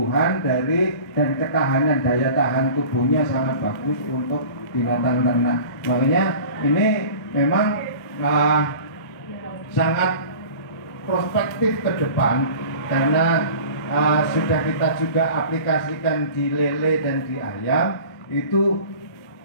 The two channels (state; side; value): late; right; 1.2 ms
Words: dari dan ketahanan daya tahan tubuhnya, sangat bagus untuk binatang ternak. Makanya ini memang sangat prospektif ke depan, karena sudah kita juga aplikasikan di lele dan di ayam. Itu